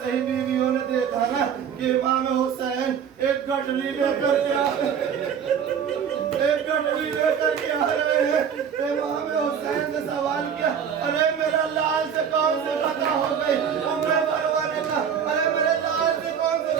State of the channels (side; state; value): left; quieter; 7.7 dB